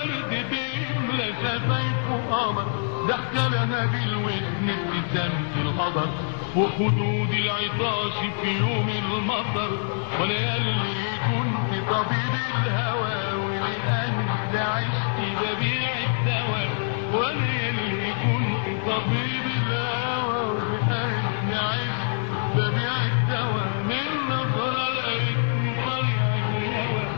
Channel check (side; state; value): right; silent; 62 dB below the other